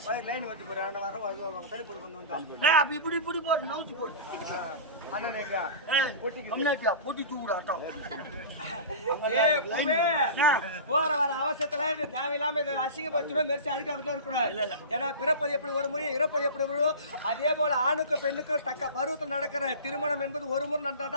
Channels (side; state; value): both; inverted; correlation -0.32